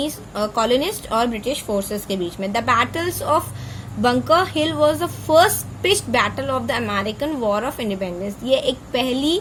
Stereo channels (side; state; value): both; identical; correlation 1.00